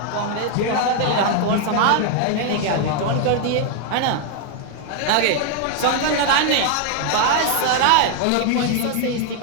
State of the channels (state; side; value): different; both; correlation 0.00